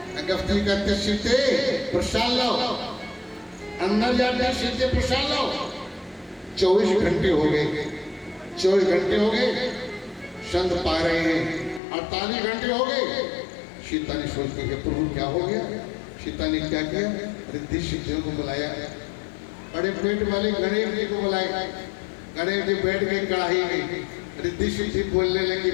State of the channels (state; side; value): drops out; right; at 11.8 s